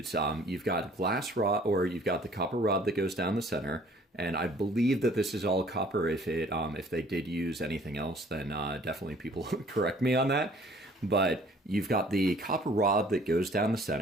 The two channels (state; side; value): normal; both; correlation 0.55